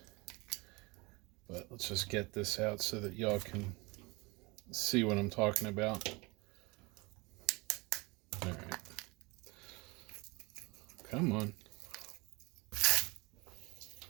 But let's just get this out so that y'all can see what I'm talking about. All right. Come on.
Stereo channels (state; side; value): quieter; left; 25.5 dB